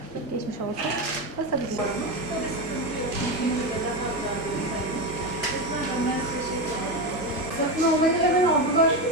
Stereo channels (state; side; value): noise; left; hum, 26 dB below the sound